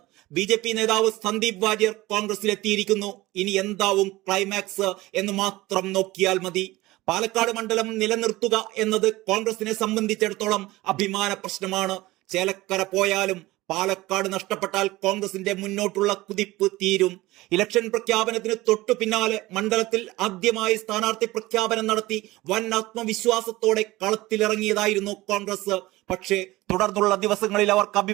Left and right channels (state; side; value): quieter; left; 19.0 dB